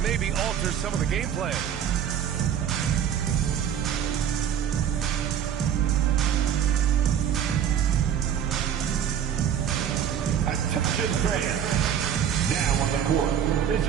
maybe alter some of the game plan. Attention fans. Now on the court is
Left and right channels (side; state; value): left; quieter; 8.9 dB